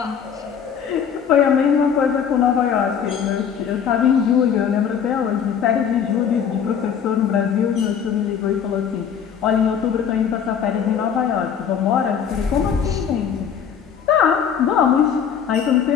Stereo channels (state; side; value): quieter; right; 7.7 dB